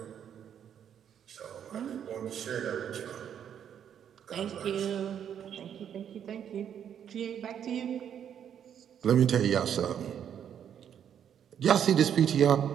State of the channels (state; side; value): quieter; left; 8.9 dB